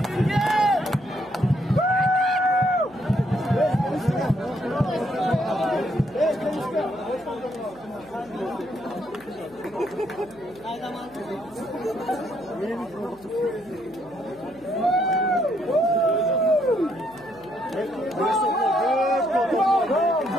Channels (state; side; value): noise; left; hum, 25 dB below the sound